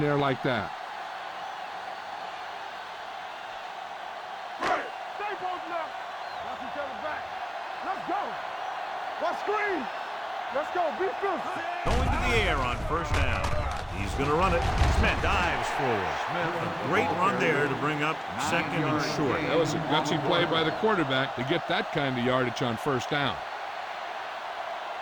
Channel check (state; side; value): identical; both; correlation 1.00